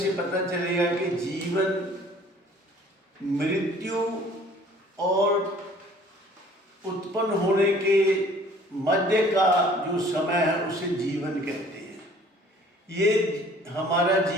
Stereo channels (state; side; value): normal; both; correlation 0.53